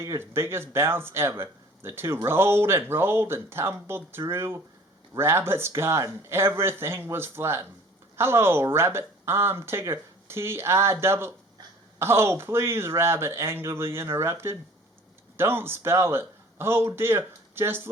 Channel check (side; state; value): both; normal; correlation 0.49